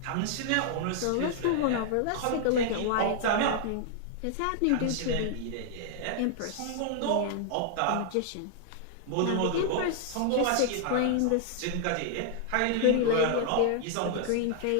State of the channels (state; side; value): different; both; correlation -0.01